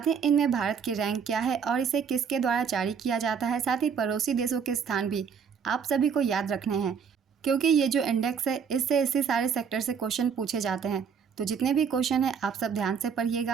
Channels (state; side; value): quieter; left; 6.7 dB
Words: ही इनमें भारत की रैंक क्या है और इसे किसके द्वारा जारी किया जाता है, साथ ही पड़ोसी देशों के स्थान भी आप सभी को याद रखने हैं, क्योंकि ये जो इंडेक्स है इससे इसी सारे सेक्टर से क्वेश्चन पूछे जाते हैं। तो जितने भी क्वेश्चन हैं आप सब ध्यान से